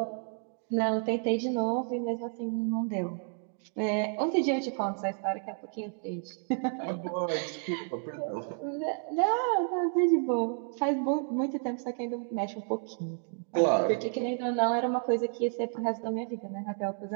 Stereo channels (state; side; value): silent; left; 57 dB below the other